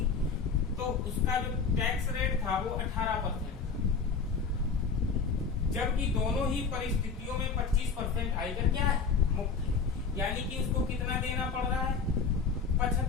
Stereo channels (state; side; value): quieter; right; 5.3 dB